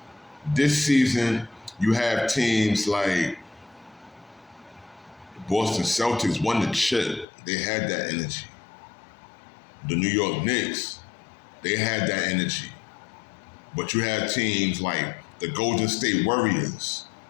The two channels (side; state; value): right; drops out; at 7.2 s